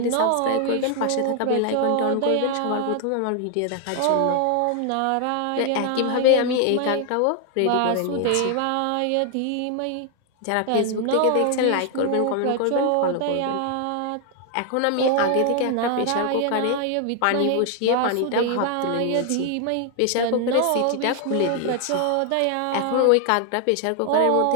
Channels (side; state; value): both; different; correlation 0.00